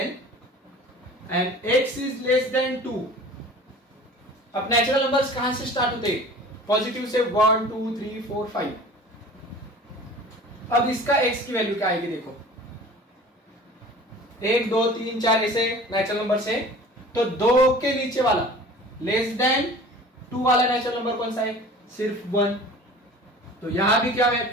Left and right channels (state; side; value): normal; both; correlation 0.43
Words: and x is less than 2। अब नेचुरल नंबर्स कहां से स्टार्ट होते हैं? पॉजिटिव से 1 2 3 4 5। अब इसका x की वैल्यू क्या आएगी? देखो 1 2 3 4 ऐसे नेचुरल नंबर से, तो 2 के नीचे वाला लेस देन 2 वाला नेचुरल नंबर कौन सा है? सिर्फ 1। तो यहां भी क्या